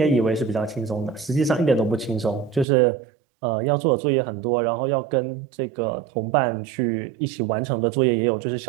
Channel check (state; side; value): drops out; left; at 2.7 s